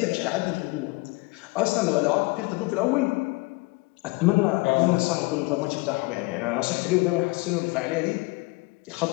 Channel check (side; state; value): right; quieter; 24.9 dB